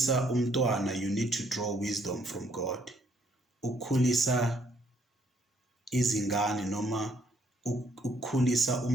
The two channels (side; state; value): both; normal; correlation 0.68